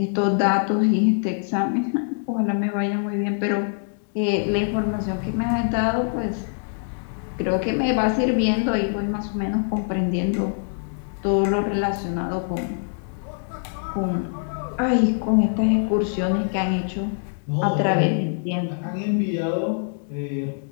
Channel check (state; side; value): silent; right; digital silence